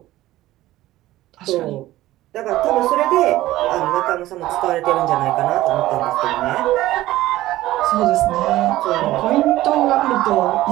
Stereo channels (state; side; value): quieter; left; 15.9 dB